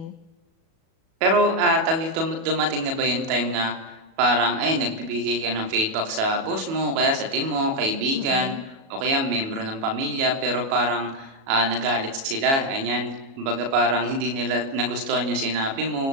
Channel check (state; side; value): late; left; 37 ms